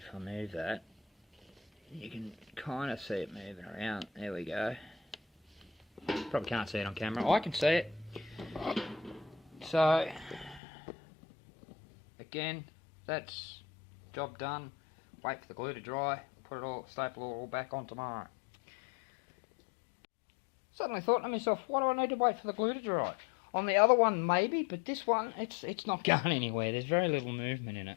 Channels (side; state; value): right; drops out; at 10.6 s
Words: I move that, you can kind of see it moving around. There we go. Probably can't see it on camera. I can see it. So, again, that's job done. Wait for the glue to dry. Put it all, staple it all back on tomorrow. Suddenly thought to myself, why do I need to wait for the glue to dry? On the other one maybe, but this one, it's not going anywhere. There's very little movement in